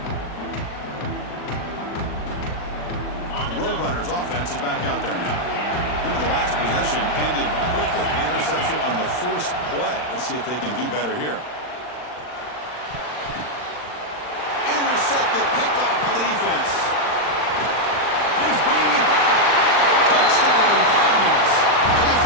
The Roadrunners offense is back out there now. Remember, the last possession ended quickly. The interception on the first play. Let's see if they can do better here. Intercepted, picked off by the defense. He's bringing it back. Touchdown, Cardinals. A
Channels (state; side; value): late; right; 39 ms